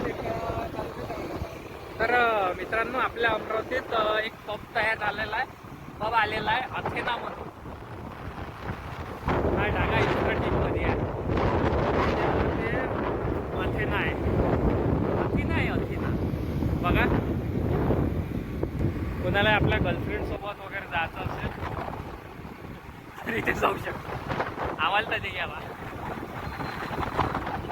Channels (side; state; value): both; identical; correlation 1.00